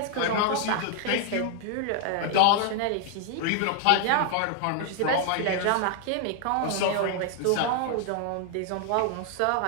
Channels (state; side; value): different; both; correlation 0.00